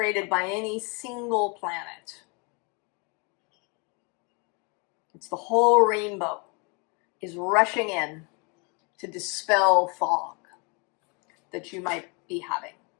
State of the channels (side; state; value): right; quieter; 32.3 dB